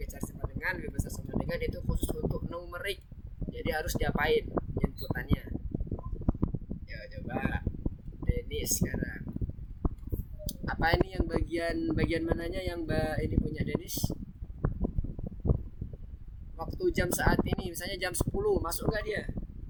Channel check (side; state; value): both; identical; correlation 1.00